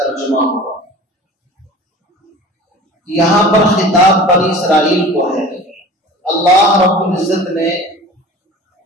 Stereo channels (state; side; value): normal; both; correlation 0.40